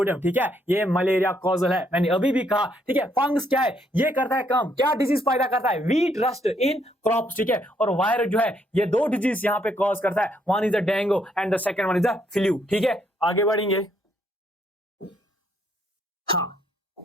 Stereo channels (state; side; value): normal; both; correlation 0.72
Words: ठीक है, ये मलेरिया कॉजल है, मैंने अभी भी कहा। ठीक है, फंगस क्या है, ये करता है काम, क्या डिजीज पैदा करता है, वीट रस्ट इन क्रॉप्स। ठीक है, और वायरस जो है ये दो डिजीज यहां पे कॉज करता है, one is the dengue and the second one is the flu. ठीक है, आगे बढ़ेंगे। हाँ,